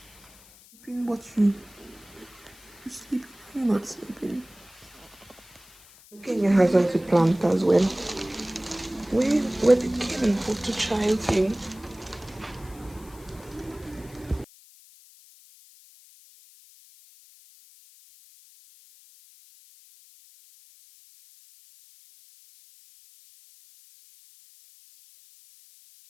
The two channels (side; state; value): left; noise; hiss, 24 dB below the sound